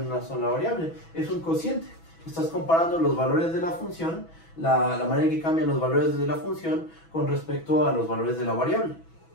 una sola variable. Es un cociente. Estás comparando los valores de la función, la manera en que cambian los valores de la función con respecto a los valores de la variable.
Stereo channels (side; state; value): right; late; 6.1 ms